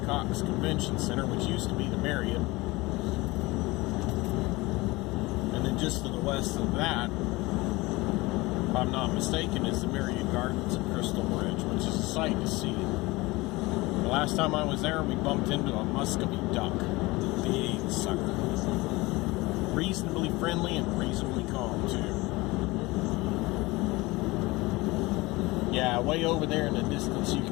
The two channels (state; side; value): quieter; right; 21.9 dB